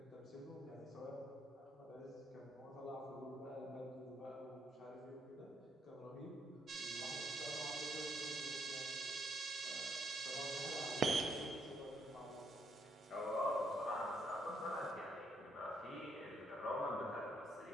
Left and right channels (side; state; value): both; normal; correlation 0.73